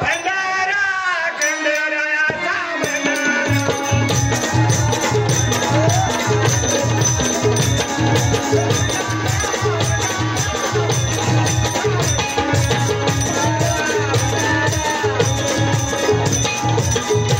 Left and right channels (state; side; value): identical; both; correlation 1.00